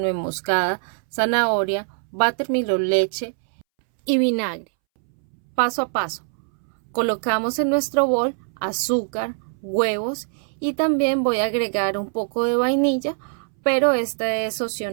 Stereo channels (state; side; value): silent; left; 64 dB below the other